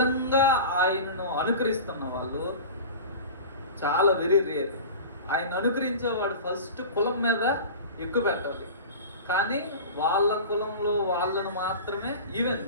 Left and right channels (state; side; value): inverted; both; correlation -0.34